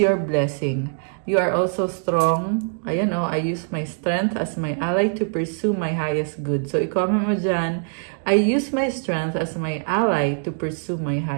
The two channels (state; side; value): silent; left; 58 dB below the other